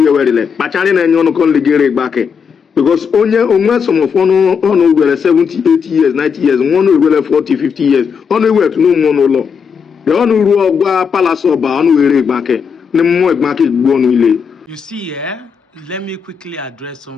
were le. Pachari na enyo no kon le gere Igbanke. Because onwe some of onu were 70, 80 years, 90 years, one were 40, 50 years. Onu were to no more no law. The onu ru ogwa palace oba onu were Igbanke. Ne mo Igbanke gbo nu ile. You see, let me quickly address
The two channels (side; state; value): right; quieter; 6.4 dB